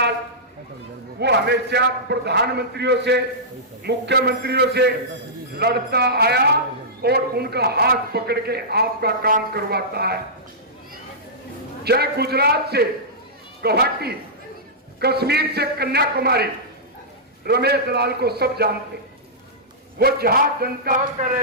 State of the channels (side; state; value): both; normal; correlation -0.15